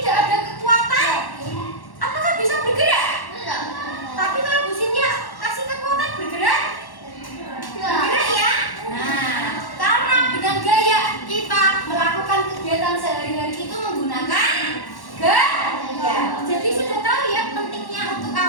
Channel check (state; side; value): late; right; 1.1 ms